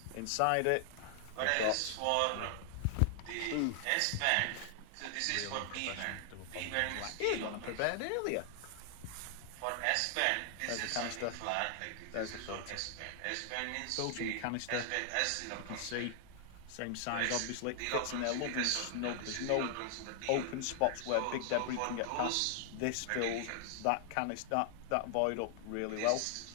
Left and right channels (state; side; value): different; both; correlation 0.00